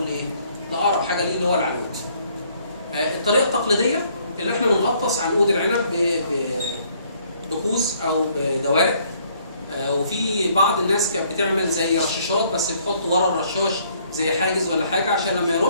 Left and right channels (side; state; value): both; inverted; correlation -0.64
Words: ايه؟ لاقرب حاجه ليه اللي هو العنود. الطريقه التقليديه اللي احنا بنغطس عنقود العنب بكوز او بدوارق، وفي بعض الناس كانت بتعمل زي رشاشات، بس بتحط ورا الرشاش زي حاجز ولا حاجه عشان لما